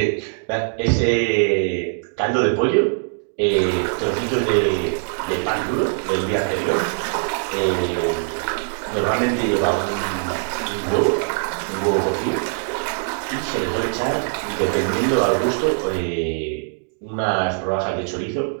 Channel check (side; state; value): left; silent; digital silence